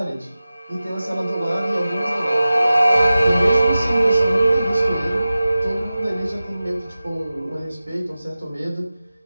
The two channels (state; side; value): inverted; both; correlation -0.96